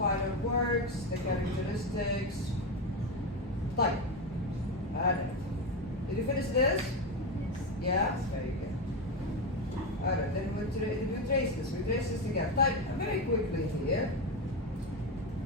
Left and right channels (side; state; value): both; normal; correlation 0.13